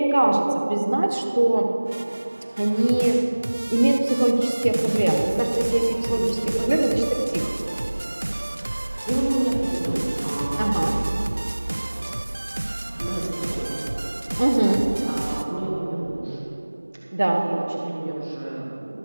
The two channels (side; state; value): both; inverted; correlation -1.00